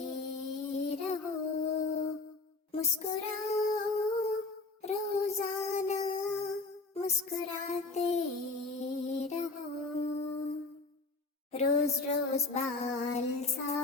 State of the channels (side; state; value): right; quieter; 3.6 dB